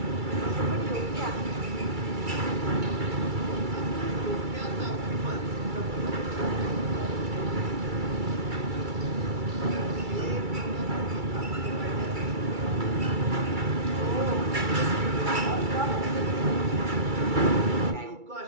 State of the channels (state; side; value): late; left; 2.3 ms